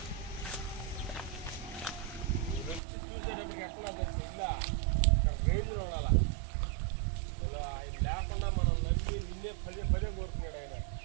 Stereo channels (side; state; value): left; drops out; at 2.8 s